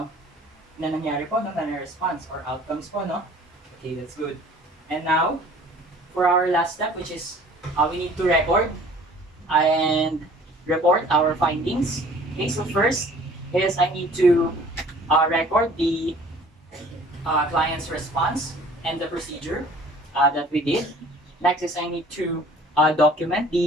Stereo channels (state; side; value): normal; both; correlation 0.51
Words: nangyari po, no? Na response or outcomes po, no? Okay, that's good. And now, for our last step, which is we need to record and report our findings. Okay, so first is I need to record the client's response and the procedure that we did. Next is I need to document